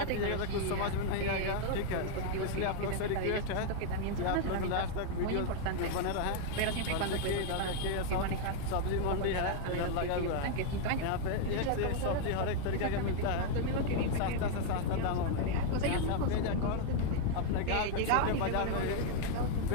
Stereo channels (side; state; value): both; different; correlation 0.00